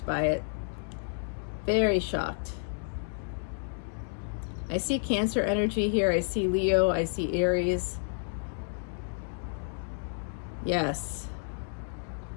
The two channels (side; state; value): right; silent; digital silence